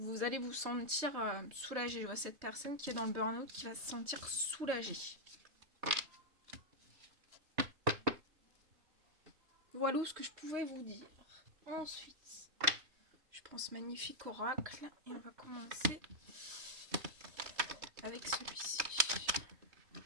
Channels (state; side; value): late; left; 3.2 ms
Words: allez vous sentir soulagé. Je vois cette personne qui est dans le burn-out qui va se sentir soulagée. Voilà ce que je pouvais vous dire. Ensuite, je pense magnifique oracle et on va commencer avec celui-ci.